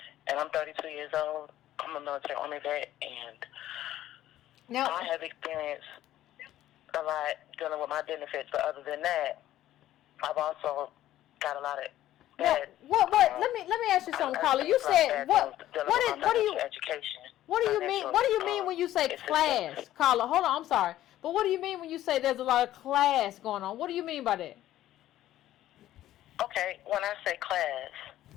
and I'm 32 years old. I'm a military Army vet, and Now, I have experienced a lot dealing with my benefits, but other than that, I've also got a lot of bad. What? Let me ask you something, Carla. You said what do you education? What do you mean? What do you mean when you say class, Carla? Hold on, I'm sorry, but what do you mean when you say there's a lot of class going on? What do you mean by that? Okay, when I say class,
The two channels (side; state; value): right; quieter; 13.5 dB